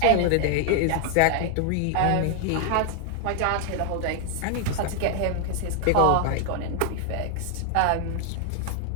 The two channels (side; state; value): both; different; correlation 0.00